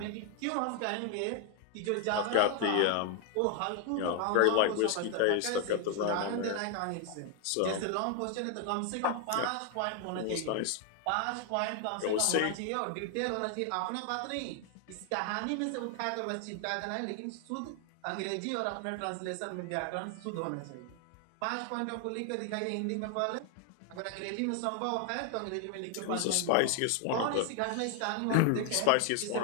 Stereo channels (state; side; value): different; both; correlation 0.00